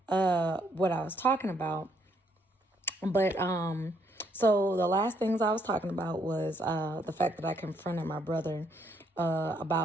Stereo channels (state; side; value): normal; both; correlation 0.71